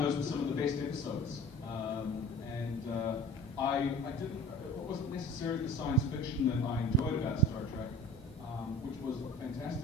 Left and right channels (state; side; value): normal; both; correlation 0.42